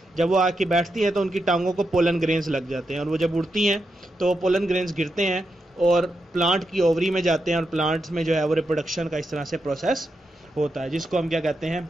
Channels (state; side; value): normal; both; correlation 0.85